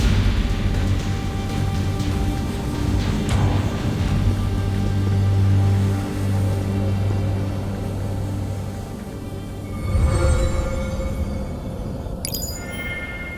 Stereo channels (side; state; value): both; identical; correlation 1.00